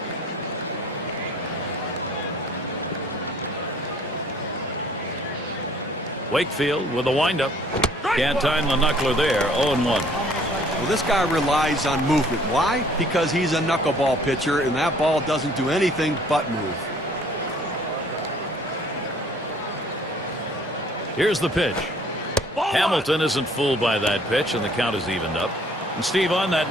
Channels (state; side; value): normal; both; correlation 0.57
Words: Wakefield with a windup. Can't time the knuckler there. 0-1. Well, this guy relies on movement. Why? Because he's a knuckleball pitcher, and that ball doesn't do anything but move. Here's the pitch. Hamilton isn't fooled by that pitch, and the count is evened up. And Steve, on that